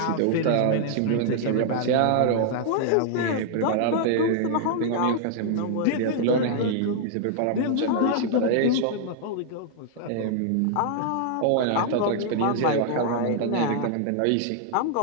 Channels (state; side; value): different; both; correlation -0.01